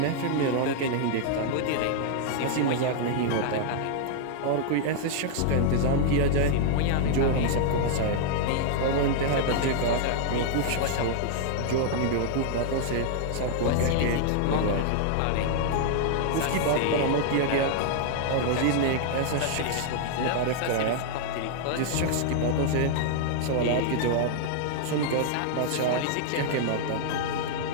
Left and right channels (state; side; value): different; both; correlation -0.01